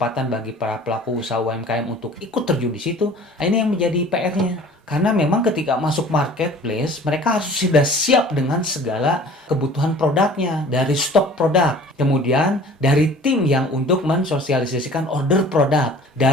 bagi para pelaku usaha UMKM untuk ikut terjun di situ? Nah, ini yang menjadi PR-nya. Karena memang ketika masuk marketplace, mereka harus sudah siap dengan segala kebutuhan produknya, dari stok produk, kemudian dari tim yang untuk mensosialisasikan order produk,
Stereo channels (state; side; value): normal; both; correlation 0.47